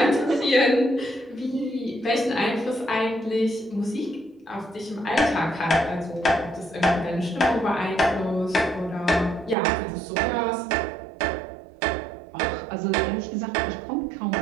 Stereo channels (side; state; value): left; drops out; at 9.6 s